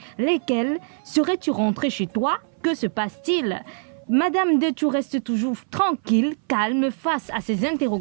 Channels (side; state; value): left; silent; 59 dB below the other